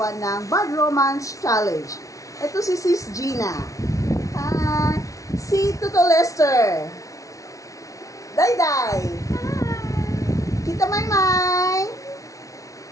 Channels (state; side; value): late; right; 0.16 ms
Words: ng Bad Romance Challenge. Ito si Sis Gina. Si Tuto Lester. Dayday. Tita Maymay.